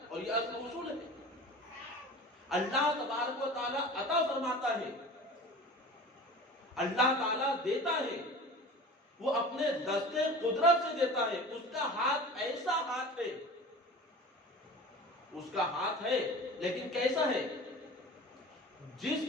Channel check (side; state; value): both; normal; correlation 0.37